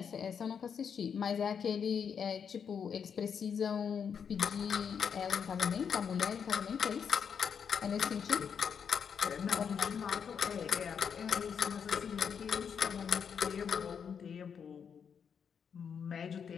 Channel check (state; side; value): quieter; right; 7.1 dB